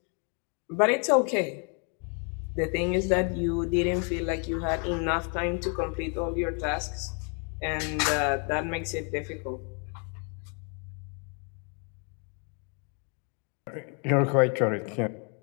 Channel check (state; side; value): quieter; right; 39.1 dB